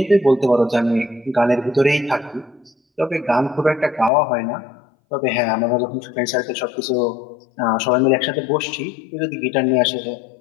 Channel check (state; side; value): drops out; right; at 4.1 s